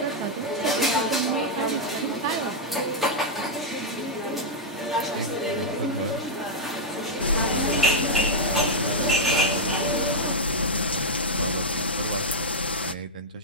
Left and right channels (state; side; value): normal; both; correlation -0.04